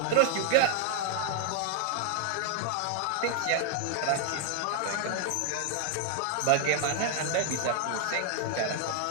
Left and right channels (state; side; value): different; both; correlation 0.00